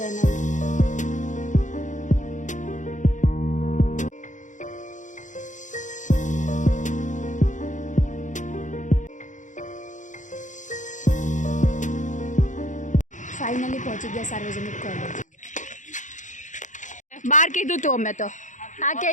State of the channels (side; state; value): right; late; 0.36 ms